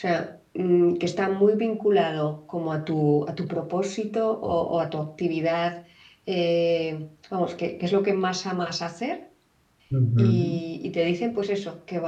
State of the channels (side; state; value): both; identical; correlation 1.00